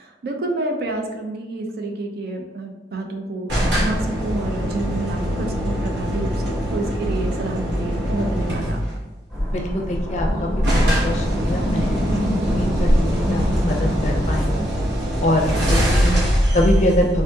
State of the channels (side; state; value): both; normal; correlation 0.77